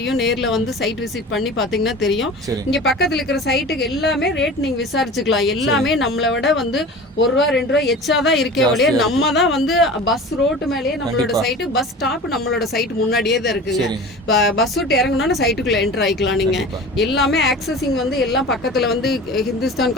நேர்ல வந்து சைட் விசிட் பண்ணி பாத்தீங்கன்னா தெரியும். இங்க பக்கத்துல இருக்கிற சைட்டுக்கு எல்லாமே ரேட் நீங்க விசாரிச்சுக்கலாம். எல்லாமே நம்மளை விட வந்து 1 ரூபா 2 ரூபா எச்சாதான் இருக்கே ஒழிய நம்ம தான் வந்து பஸ் ரோட்டு மேலேயே நம்மளோட சைட்டு, பஸ் ஸ்டாப் நம்மளோட சைட் முன்னாடியே தான் இருக்குங்க. பஸ் விட்டு இறங்கணும்னா சைட்டுக்குள்ள என்டர் ஆயிக்கலாம். நீங்க எல்லாமே ஆக்சஸிங் வந்து எல்லாம் பக்கத்துல வந்து Hindustan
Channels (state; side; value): normal; both; correlation 0.37